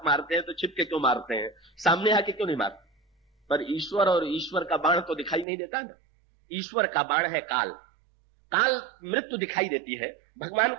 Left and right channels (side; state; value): left; drops out; at 5.5 s